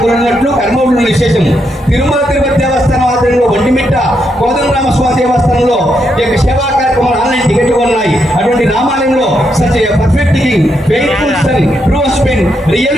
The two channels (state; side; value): normal; both; correlation 0.80